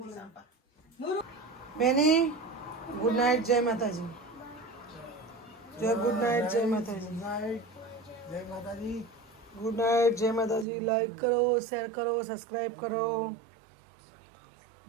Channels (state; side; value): drops out; left; at 10.7 s